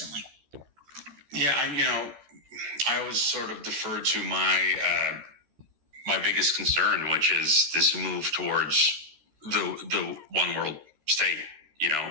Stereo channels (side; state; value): left; late; 13 ms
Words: Yeah, I always sort of defer to my biggest concern, which is this move towards the one world state.